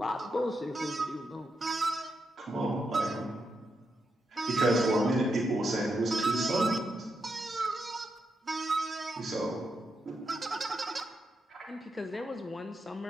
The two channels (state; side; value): normal; both; correlation 0.84